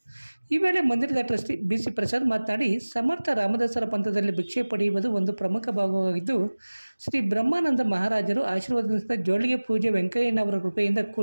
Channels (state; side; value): inverted; both; correlation -1.00